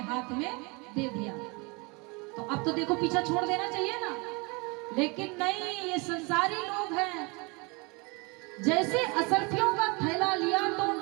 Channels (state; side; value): quieter; left; 28.9 dB